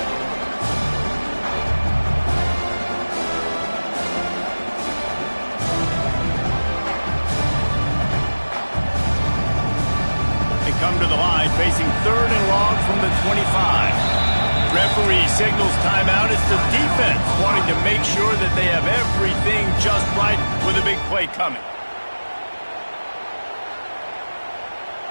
Come to the line, facing third and long from the 25. Referee signals timeout. It's the defense wanting to make sure that they have everything just right with a big play coming.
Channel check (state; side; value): inverted; both; correlation -1.00